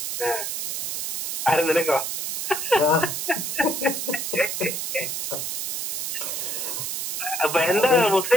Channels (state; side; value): noise; right; hiss, 3 dB below the sound